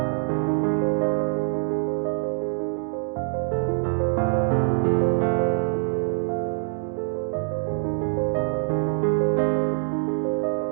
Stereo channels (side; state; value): left; silent; digital silence